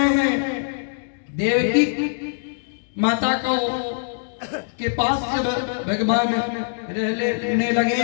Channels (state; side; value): silent; right; digital silence